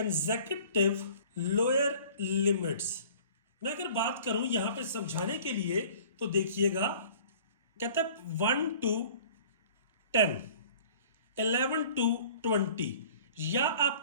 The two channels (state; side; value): inverted; both; correlation -0.49